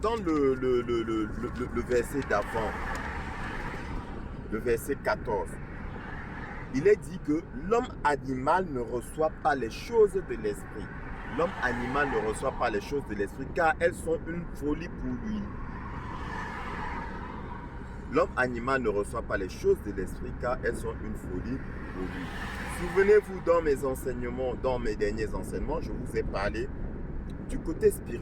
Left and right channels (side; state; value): both; identical; correlation 1.00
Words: le verset d'avant, le verset 14, il est dit que l'homme animal ne reçoit pas les choses de l'esprit. L'homme animal ne reçoit pas les choses de l'esprit car elles sont une folie pour lui. L'homme animal ne reçoit pas les choses de l'esprit car elles sont une folie pour lui. Souvenez-vous dans mes enseignements, dans mes derniers enseignements, je vous ai parlé du côté